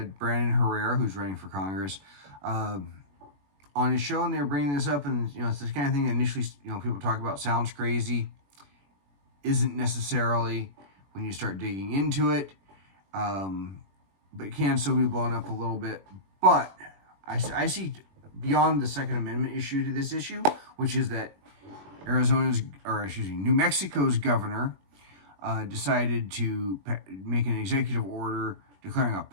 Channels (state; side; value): late; left; 21 ms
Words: Brandon Herrera, who's running for Congress, uh, on his show, and they were bringing this up. And it's this kind of thing that initially, people talk about sounds crazy, isn't necessarily when you start digging into it, but it can still be blown up a little bit. But I see beyond the Second Amendment issue to this issue, which is that New Mexico's governor decided to make an executive order declaring a